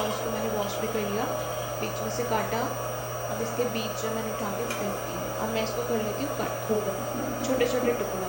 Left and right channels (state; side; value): identical; both; correlation 1.00